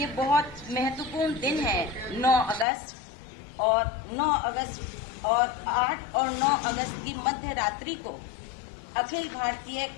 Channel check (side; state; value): right; drops out; at 2.7 s